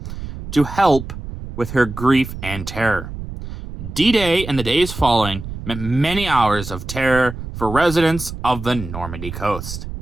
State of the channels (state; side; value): noise; right; rumble, 9 dB below the sound